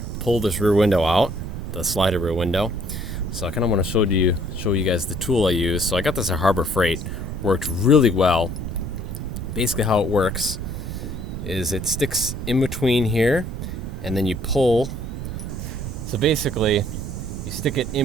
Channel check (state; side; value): noise; right; rumble, 6 dB below the sound